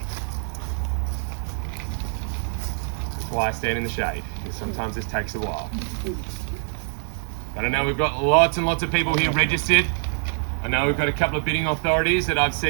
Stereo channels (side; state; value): left; silent; digital silence